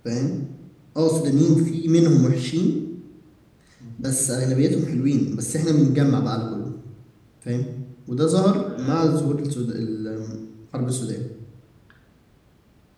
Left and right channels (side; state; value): both; identical; correlation 1.00